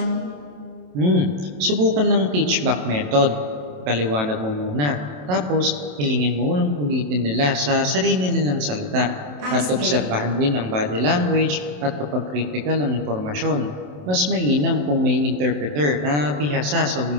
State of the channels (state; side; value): late; left; 27 ms